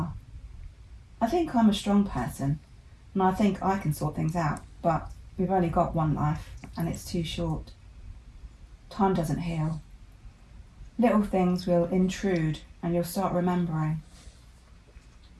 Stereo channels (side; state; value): both; identical; correlation 1.00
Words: I think I'm a strong person, and I think I can sort things out, but we've only got one life, and it's too short. Time doesn't heal. Little things will intrude, and you'll start remembering.